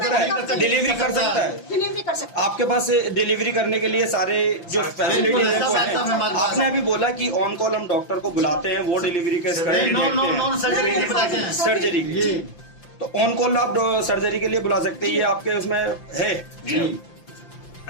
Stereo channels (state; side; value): late; right; 5.8 ms